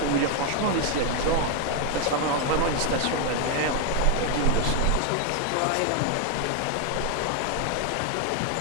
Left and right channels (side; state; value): both; different; correlation 0.01